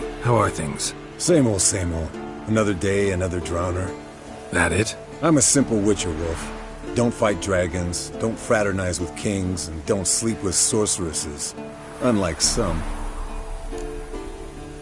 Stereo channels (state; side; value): identical; both; correlation 1.00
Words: How are things? Same old, same old. Another day, another drowner. That it? I'm a simple witcher, Wolf. Don't fight dragons, don't fraternize with kings, and don't sleep with sorceresses. Unlike some.